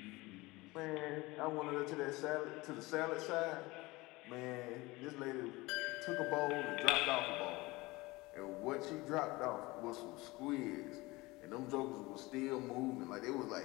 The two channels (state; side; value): quieter; right; 21.8 dB